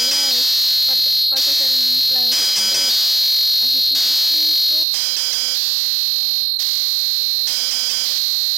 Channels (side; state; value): left; drops out; at 4.9 s